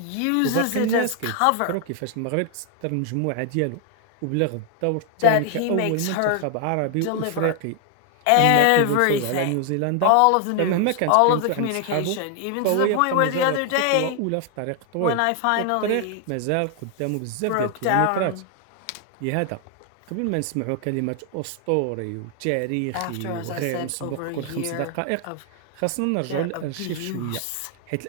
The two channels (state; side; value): different; both; correlation 0.00